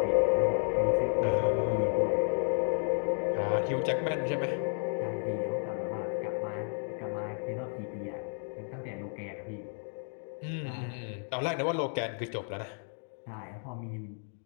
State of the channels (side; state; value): right; silent; 56 dB below the other